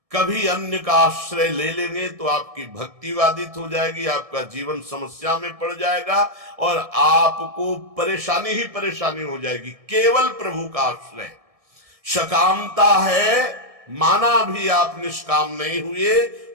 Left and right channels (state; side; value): late; left; 1.7 ms